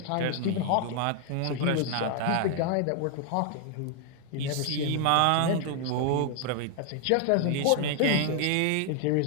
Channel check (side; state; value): both; different; correlation 0.00